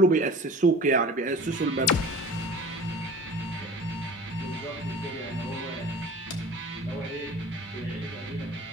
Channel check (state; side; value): normal; both; correlation 0.40